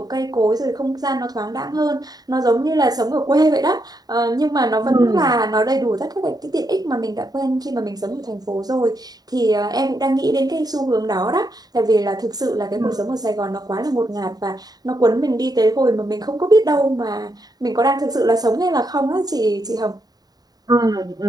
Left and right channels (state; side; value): late; left; 0.19 ms